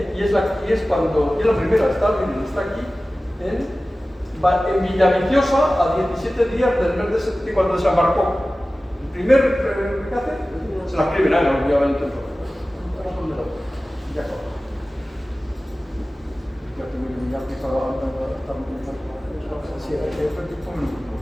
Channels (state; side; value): normal; both; correlation 0.96